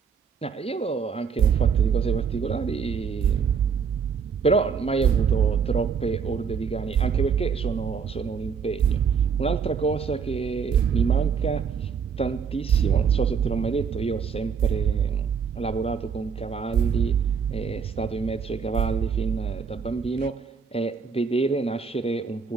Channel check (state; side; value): quieter; left; 6.3 dB